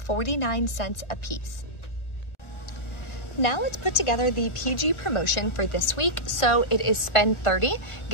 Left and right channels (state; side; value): late; right; 1.4 ms